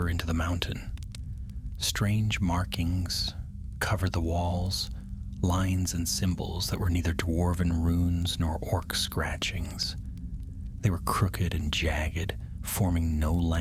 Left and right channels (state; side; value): identical; both; correlation 1.00